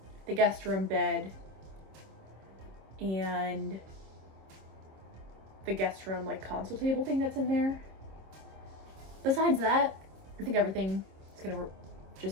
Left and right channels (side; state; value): left; late; 26 ms